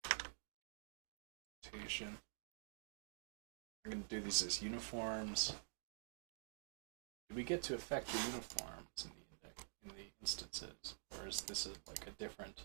Rotation. I'm gonna do these as uniforms. Do we get to affect your uniforms in the index in the instances, or is this like a different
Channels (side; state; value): left; silent; digital silence